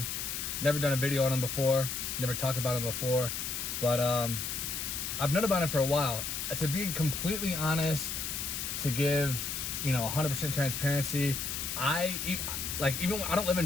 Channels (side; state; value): left; noise; hiss, 3 dB below the sound